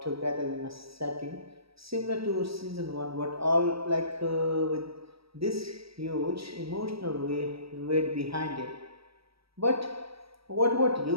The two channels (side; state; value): left; late; 0.76 ms